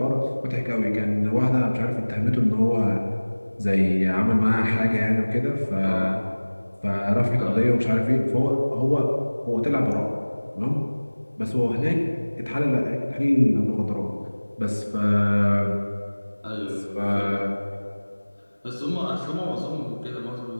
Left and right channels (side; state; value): both; inverted; correlation -1.00